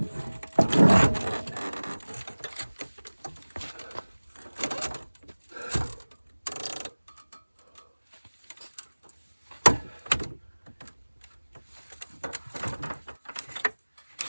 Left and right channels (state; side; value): inverted; both; correlation -1.00